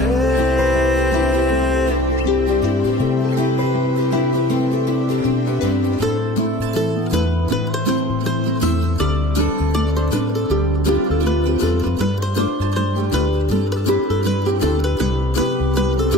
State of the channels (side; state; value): both; normal; correlation 0.48